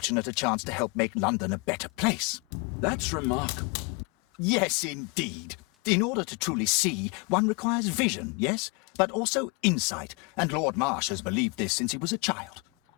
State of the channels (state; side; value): quieter; right; 31.7 dB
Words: a chance to help make London a better place. That's remarkable. Yes, indeed. In order to truly see, one requires vision, yes, but also insight, and Lord Marsh has believed this since he was a child.